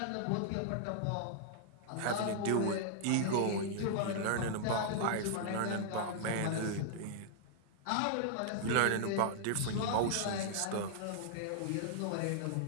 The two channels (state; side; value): different; both; correlation -0.01